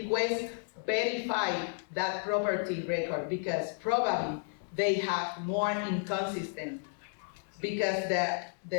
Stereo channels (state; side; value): silent; right; 56 dB below the other